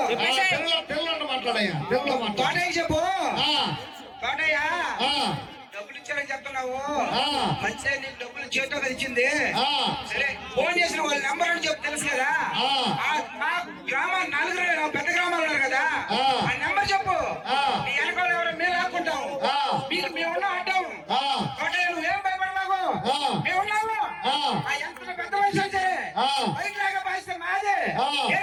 తెలుగులో మాట్లాడయ్యా తెలుగులో మాట్లాడ తోటయ్య చెప్పు ఆ. తోటయ్య ఆ. డబ్బులు ఇచ్చారని చెప్తున్నావు ఆ. మంచిగా నీకు డబ్బులు చేతితో కదా ఇచ్చింది ఆ. సరే ఫోన్ చేసిన వాళ్ళ నెంబర్ అని చెప్పి తెలుసు కదా ఆ. మా గ్రామం నలుగురు పెద్ద గ్రామాలు ఉన్నారు కదా ఆ. ఆ నెంబర్ చెప్పు ఆ. మీ వెనకాల ఎవరో మేము ఆపుకుంటాం ఆ. మీకు మేము అడ్డాం ఆ. తోటయ్య నువ్వేం భయపడమాకు ఆ. మేము ఆ. ఏ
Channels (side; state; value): both; identical; correlation 1.00